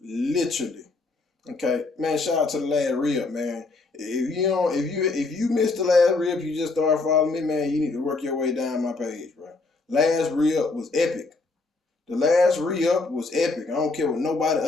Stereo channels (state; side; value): quieter; right; 3.7 dB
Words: literally. Okay. Man, shout out to the last rib, man. If you missed the last rib, you just started following me, man, you need to work your way down my page, bro. Last rib was epic. The last re-up was epic. I don't care what nobody